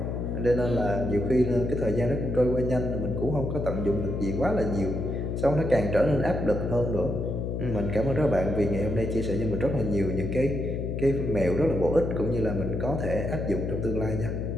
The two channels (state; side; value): noise; left; hum, 2 dB below the sound